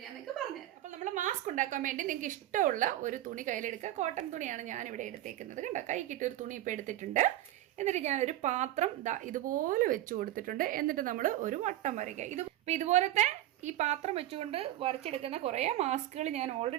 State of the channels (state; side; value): quieter; left; 14.3 dB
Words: ഞാൻ നിങ്ങൾക്ക് പറഞ്ഞുതരാം. അപ്പോൾ നമ്മൾ മാസ്ക് ഉണ്ടാക്കാൻ വേണ്ടി നിങ്ങൾക്ക് ഇഷ്ടമുള്ള ഒരു തുണി കയ്യിലെടുക്കുക. കോട്ടൺ തുണിയാണ് ഞാനിവിടെ എടുത്തേക്കുന്നത്. കണ്ടോ, കൈക്കിട്ട് ഒരു തുണി ഇപ്പോൾ എടുത്തിട്ടുണ്ട്. എന്നിട്ട് ഞാനൊരു പാത്രം ഇതുപോലെ വെച്ച് കൊടുത്തിട്ടുണ്ട്. എന്നിട്ട് നമ്മൾ ഒരു വട്ടം വരയ്ക്കുക. ഇപ്പം ഇതുപോലത്തെ ഈ പാത്രം വെച്ചുകൊണ്ട് വരച്ചെടുക്കുന്ന കുറേ മാസ്കുകൾ ഞാൻ